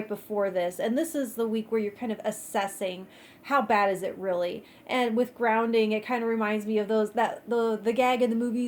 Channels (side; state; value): both; identical; correlation 1.00